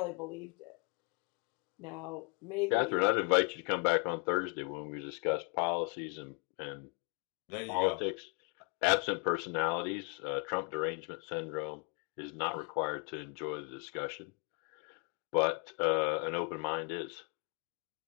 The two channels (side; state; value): right; quieter; 32.2 dB